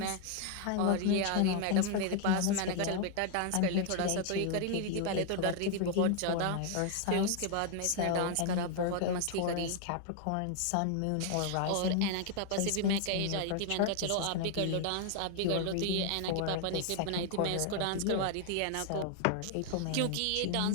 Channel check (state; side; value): different; both; correlation 0.00